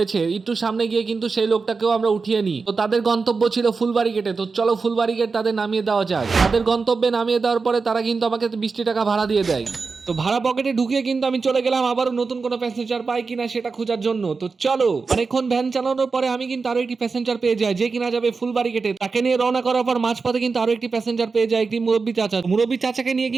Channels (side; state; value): left; quieter; 4.6 dB